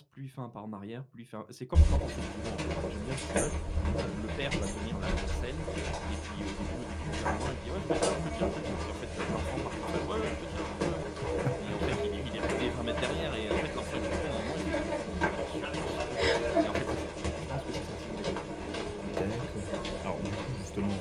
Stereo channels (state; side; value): identical; both; correlation 1.00